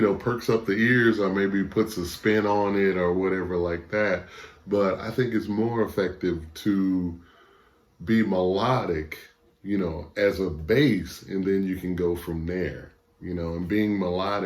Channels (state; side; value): identical; both; correlation 1.00